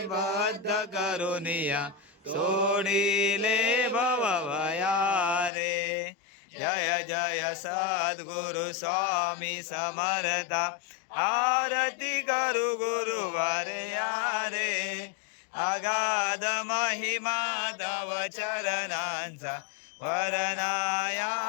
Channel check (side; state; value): right; drops out; at 5.5 s